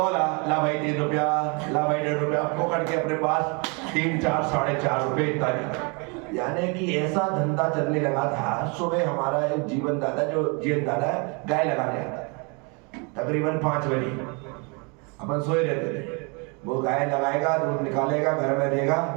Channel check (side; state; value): left; quieter; 32.5 dB